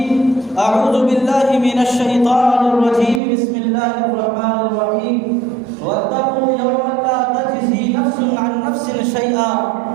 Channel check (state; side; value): drops out; left; at 3.2 s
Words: أعوذ بالله من الشيطان الرجيم بسم الله الرحمن الرحيم واتقوا يوما لا تجزي نفس عن نفس شيئا